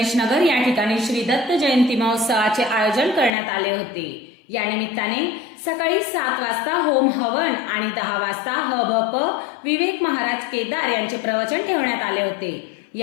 नगर या ठिकाणी श्री दत्त जयंती महोत्सवाचे आयोजन करण्यात आले होते. या निमित्ताने सकाळी 7 वाजता होम हवन आणि 10 वाजता हभप विवेक महाराज केदार यांचे प्रवचन ठेवण्यात आले होते.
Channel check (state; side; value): drops out; right; at 3.3 s